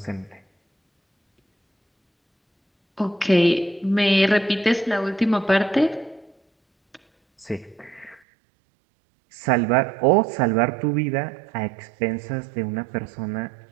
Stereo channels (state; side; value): drops out; left; at 8.2 s